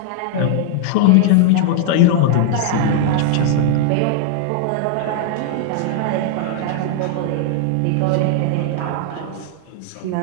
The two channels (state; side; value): different; both; correlation 0.00